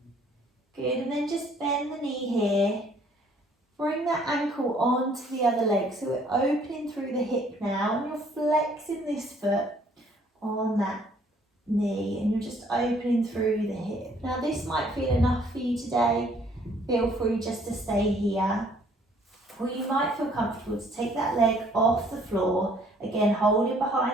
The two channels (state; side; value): normal; both; correlation 0.61